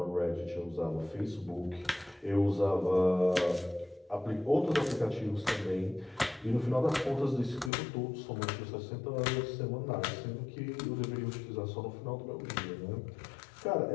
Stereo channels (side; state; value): right; drops out; at 7.7 s